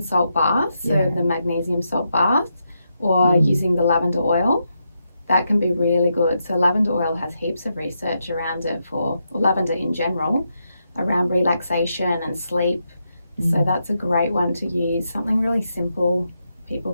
salt bath, so Yeah. the magnesium salt bath, or Mm. using the lavender oil. That can be really good. So lavender oil has heaps of research around it or lavender in general, around relaxation and sleep. So that's a great one to use. Something really simple people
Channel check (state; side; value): inverted; both; correlation -0.83